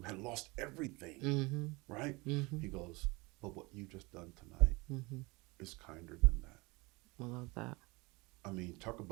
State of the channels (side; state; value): left; quieter; 25.1 dB